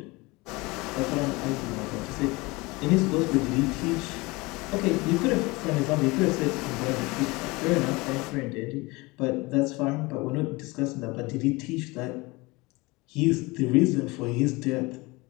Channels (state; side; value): quieter; right; 23.8 dB